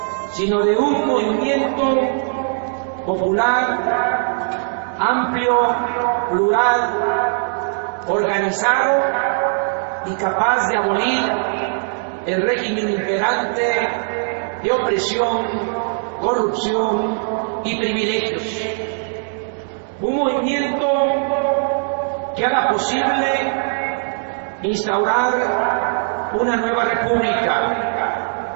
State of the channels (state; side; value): silent; left; digital silence